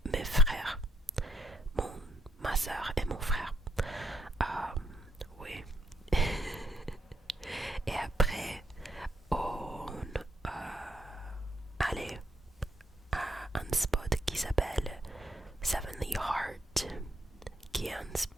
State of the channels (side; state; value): both; normal; correlation 0.74